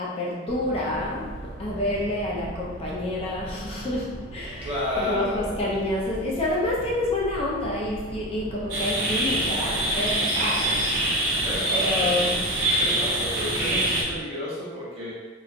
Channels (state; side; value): normal; both; correlation 0.21